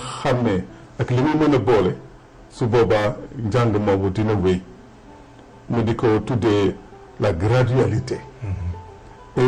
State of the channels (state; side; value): identical; both; correlation 1.00